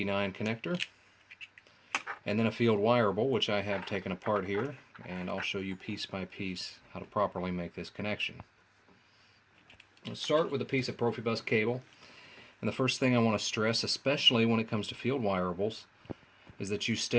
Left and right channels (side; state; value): both; identical; correlation 1.00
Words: connector, and then a field wireable, which I have taken apart here, and I'll show you piece by piece how to properly make this connection. Let's start with a piece of Profibus cable, and the first thing I want to stress, especially when it comes to field wireables, is that you